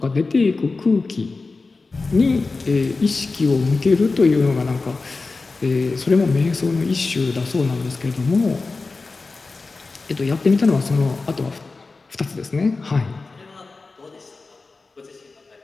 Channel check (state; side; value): quieter; right; 3.8 dB